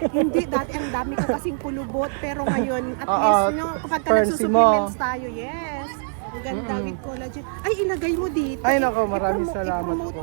Hindi, dati ang dami ko kasing pulubot. Pero ngayon, at Oo, least, no, kapag ka Fern-C nagsusupplements tayo, yes. Ang ganda with collagen. Ay, ilagay mo dito. Ay, nako, maraming salamat I-promote po.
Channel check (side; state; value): left; silent; digital silence